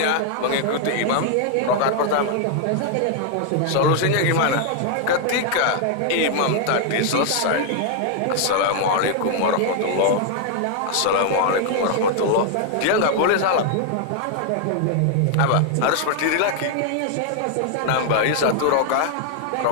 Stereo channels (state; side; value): different; both; correlation 0.00